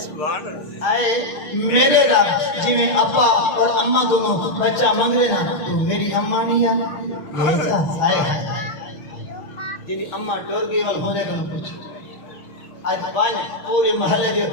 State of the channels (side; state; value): right; late; 6.8 ms